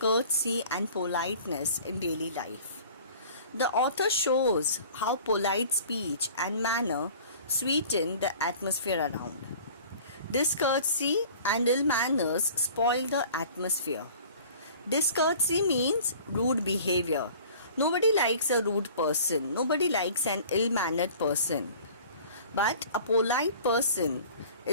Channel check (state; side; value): inverted; both; correlation -0.46